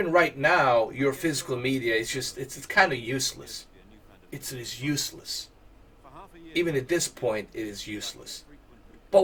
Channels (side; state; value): both; identical; correlation 1.00